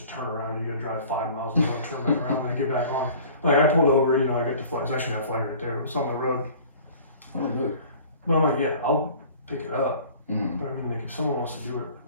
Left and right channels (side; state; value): both; inverted; correlation -0.47